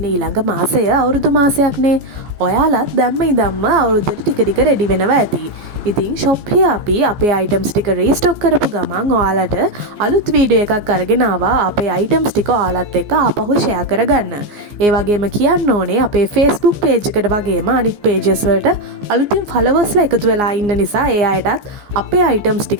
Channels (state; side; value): late; left; 15 ms